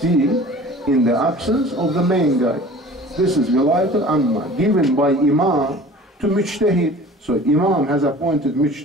in the absence of the main guy. This is Wilayat al-Amma, given by Imam to Mujtahid. So Imam has appointed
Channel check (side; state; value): both; normal; correlation 0.44